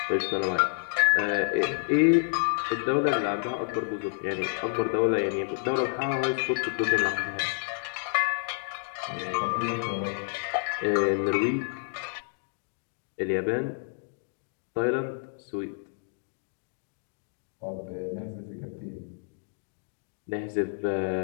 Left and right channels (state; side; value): silent; right; 58 dB below the other